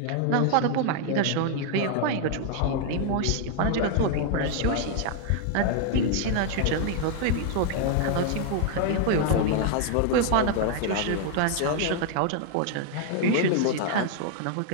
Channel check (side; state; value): both; different; correlation 0.00